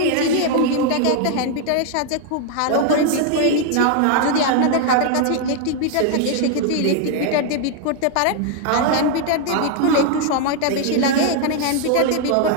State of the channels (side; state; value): both; different; correlation 0.00